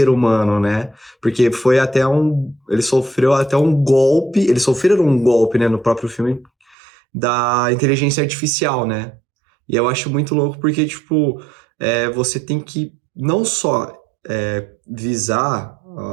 humano, né? Porque foi até ele sofreu até um golpe, eles sofreram um golpe, né, no próprio filme, da inteligência artificial, né? E eu acho muito louco porque, tipo, você tem que não só visar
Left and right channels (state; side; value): drops out; left; at 6.8 s